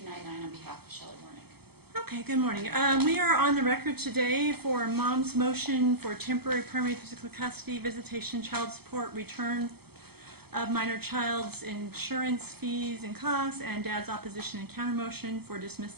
on behalf of Shelley Warneck. Okay, good morning. We are on the record today for Mom's motion for temporary permanent physical custody, visitation, child support, return of minor child's insurance fees and costs, and Dad's opposition and countermotion for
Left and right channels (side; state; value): left; late; 0.96 ms